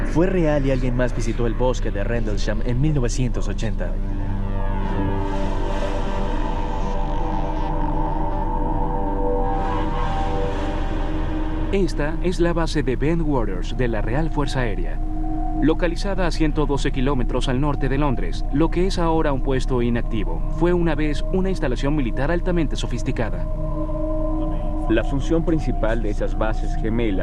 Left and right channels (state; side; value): identical; both; correlation 1.00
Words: Fue real y alguien más visitó el bosque de Rendlesham en 1980. Esta es la base de Bentwaters de la Real Fuerza Aérea, localizada a 112 kilómetros al norte de Londres. Lo que es ahora un puesto inactivo fue una vez una instalación militar altamente sofisticada. La función principal de esas bases